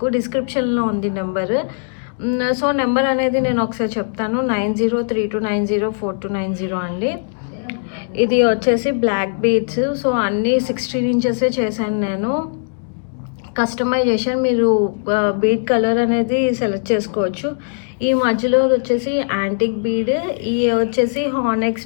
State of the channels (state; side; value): silent; right; 67 dB below the other